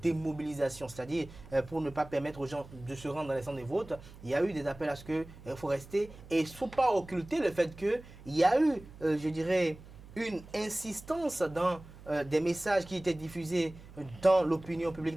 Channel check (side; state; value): right; noise; hum, 18 dB below the sound